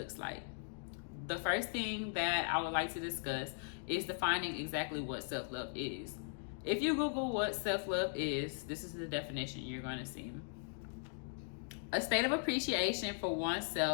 like. The first thing that I would like to discuss is defining exactly what self-love is. If you Google what self-love is, this is the definition you're going to see. A state of appreciation for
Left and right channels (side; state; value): right; silent; digital silence